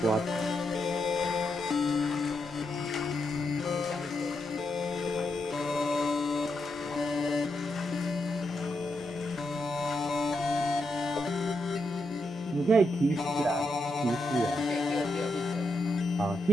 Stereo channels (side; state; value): right; noise; hum, 27 dB below the sound